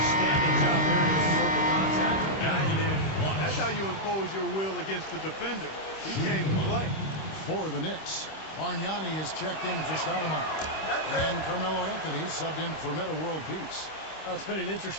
job there to absorb the contact and guide it in. That's how you impose your will against the defender. He came to play. For the Knicks, Bargnani is checked in for Stoudemire. And Carmelo Anthony subbed in for Meta World Peace. Well, it's been an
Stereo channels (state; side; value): late; right; 26 ms